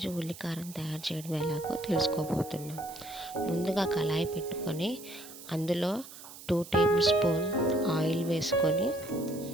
ఉల్లికారం తయారు చేయడం ఎలాగో తెలుసుకోబోతున్నాం. ముందుగా కళాయి పెట్టుకొని అందులో 2 టేబుల్ స్పూన్ ఆయిల్ వేసుకొని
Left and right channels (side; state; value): right; noise; hiss, 16 dB below the sound